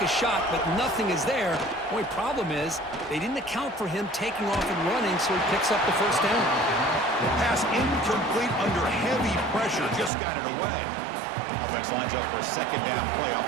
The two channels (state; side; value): drops out; left; at 10.1 s